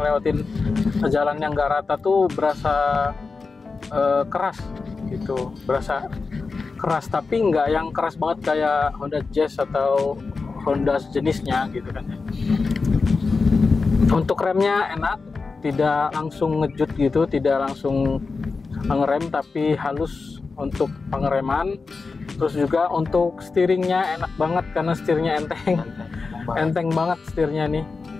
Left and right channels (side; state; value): right; quieter; 4.3 dB